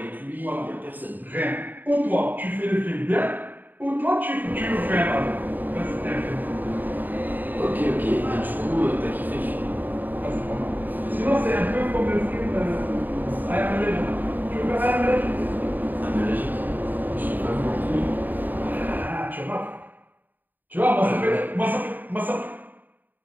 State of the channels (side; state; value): left; late; 0.087 ms